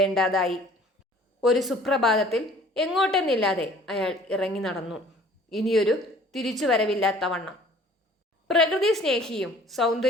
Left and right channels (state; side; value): normal; both; correlation 0.51